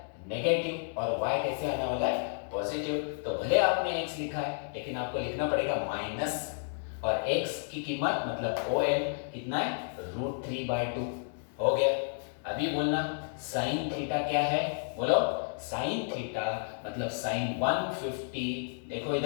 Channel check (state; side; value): silent; right; 57 dB below the other